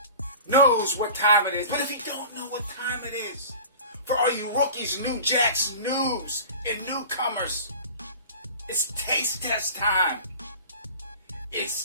knows what time it is. But if you don't know what time it is, for all you rookies, new jacks, noobs, and newcomers, it's taste test time.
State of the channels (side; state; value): both; inverted; correlation -0.38